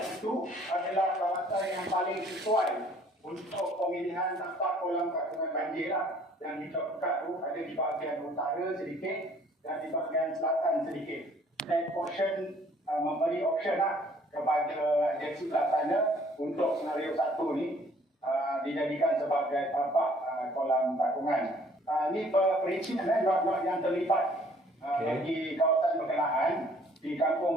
itu adalah kawasan yang paling sesuai untuk pemilihan tapak kolam takungan banjir lah. Yang dicokat tu ada di bahagian utara sedikit dan di bahagian selatan sedikit. Dan portion memberi option lah kepada agensi pelaksana untuk senario 1 ni dijadikan sebagai tapak kolam takungan. Ini perincian lot-lot yang terlibat bagi kawasan berkenaan di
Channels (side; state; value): both; normal; correlation 0.58